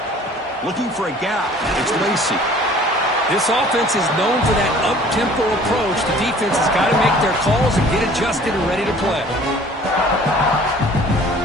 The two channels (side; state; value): both; normal; correlation 0.50